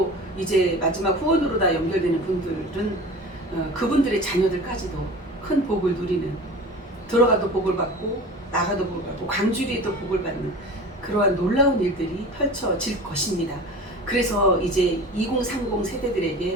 이제 마지막 후원으로 다 연결되는 분들은 그분들의 자녀들까지도 큰 복을 누리는 들어가도 복을 받고 나가도 복을 받고 광주리에도 복을 받는 그러한 놀라운 일들이 펼쳐질 것입니다. 그래서 이제 2030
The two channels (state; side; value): normal; both; correlation 0.37